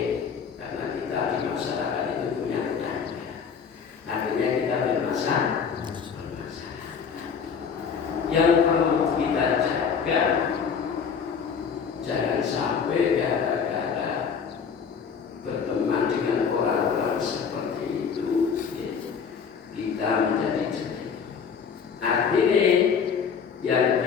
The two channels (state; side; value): quieter; right; 6.5 dB